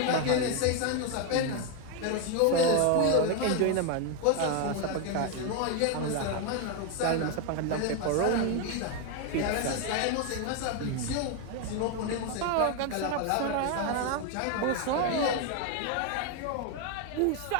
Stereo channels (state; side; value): different; both; correlation 0.01